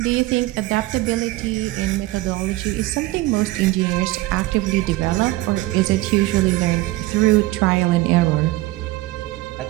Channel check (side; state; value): left; quieter; 18.5 dB